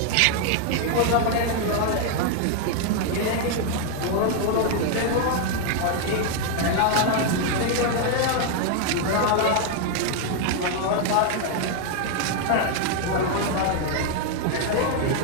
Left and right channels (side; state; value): both; different; correlation 0.00